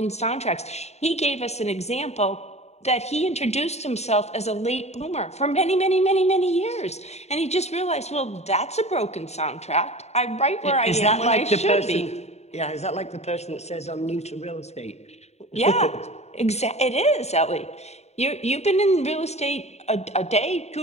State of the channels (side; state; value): right; late; 0.32 ms